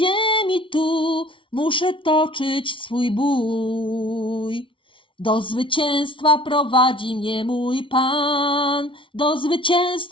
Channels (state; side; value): late; right; 0.25 ms